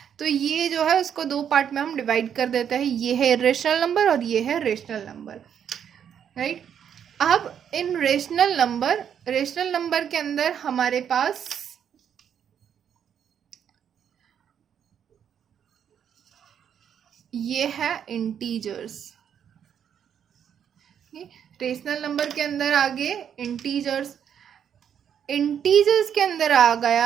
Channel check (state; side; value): quieter; left; 8.6 dB